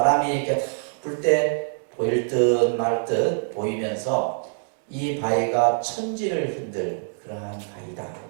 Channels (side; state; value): left; silent; digital silence